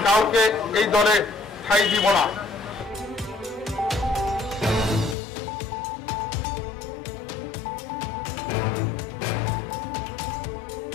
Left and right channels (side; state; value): right; drops out; at 5.2 s